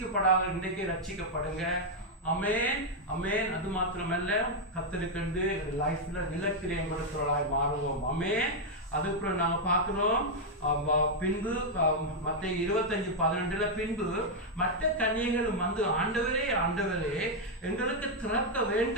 இன்றைக்கே ரட்சிக்கப்படுங்க. அமேன் அமேன். அது மாத்திரமல்ல, கத்தருக்கு லைஃப்ல நிலக்கிரியம் கொடுக்கிறவர்களாய் மாறுவோம். அமேன். அதுக்கப்புறம் நாங்க பார்க்கிறோம் பின்பு மத்தேயு 25:12 பின்பு மற்ற கன்னிகைகளும் வந்து ஆண்டவரே ஆண்டவரே எங்களுக்கு திறக்க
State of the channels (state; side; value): normal; both; correlation -0.01